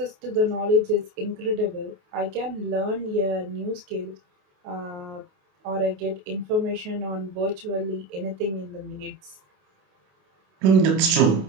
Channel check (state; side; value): late; left; 29 ms